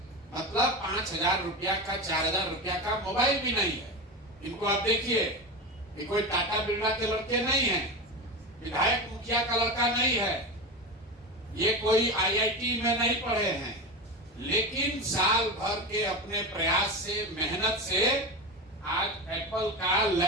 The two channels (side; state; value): both; normal; correlation 0.22